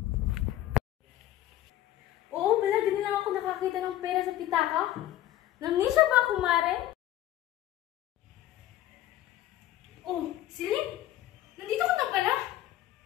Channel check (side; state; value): right; quieter; 13.6 dB